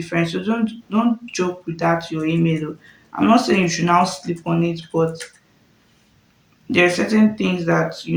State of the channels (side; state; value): both; identical; correlation 1.00